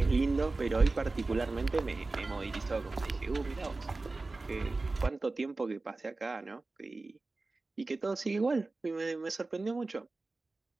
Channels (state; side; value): quieter; left; 3.4 dB